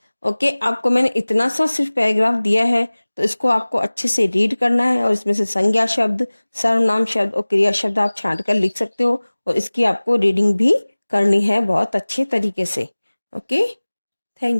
ओके, आपको मैंने इतना सा सिर्फ पैराग्राफ दिया है, तो इसको आपको अच्छे से रीड करना है और इसमें से संज्ञा शब्द, सर्वनाम शब्द और क्रिया शब्द आप छांट कर लिख सकते हो और इसकी आपको रीडिंग भी करनी है बहुत अच्छे तरीके से। Okay,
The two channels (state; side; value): inverted; both; correlation -1.00